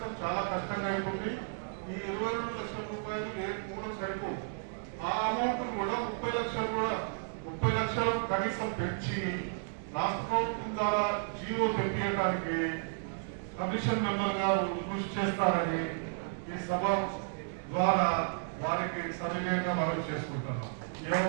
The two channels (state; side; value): silent; left; digital silence